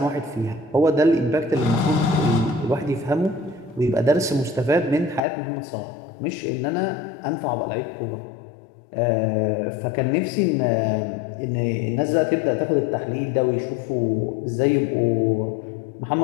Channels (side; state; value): right; drops out; at 5.2 s